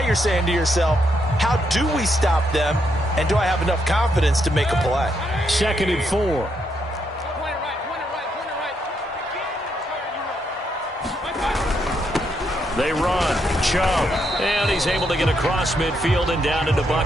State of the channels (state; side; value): normal; both; correlation 0.78